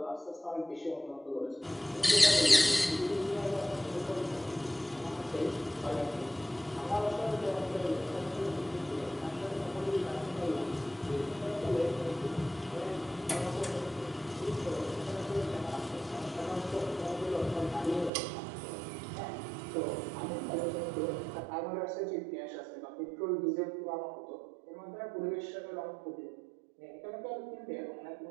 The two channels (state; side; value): drops out; left; at 18.1 s